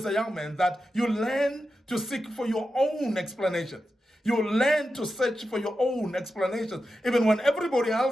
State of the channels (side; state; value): both; normal; correlation 0.90